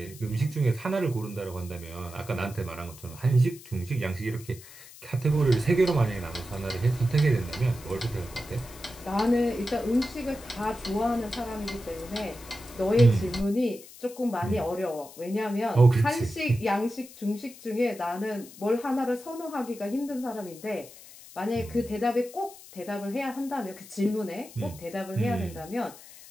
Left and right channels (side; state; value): left; noise; hiss, 18 dB below the sound